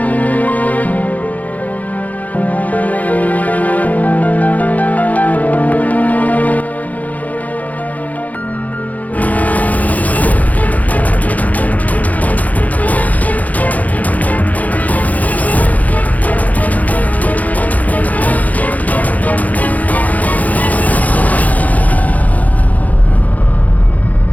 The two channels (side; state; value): right; late; 0.072 ms